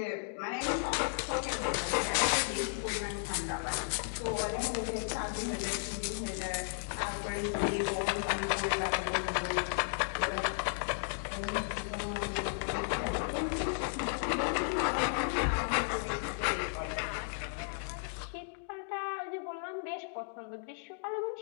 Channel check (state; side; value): silent; right; digital silence